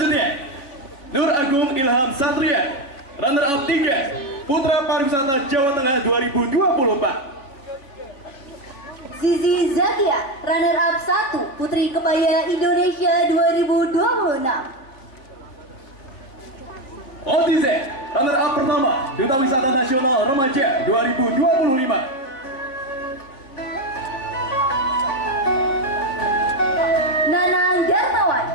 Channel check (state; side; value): late; right; 3.5 ms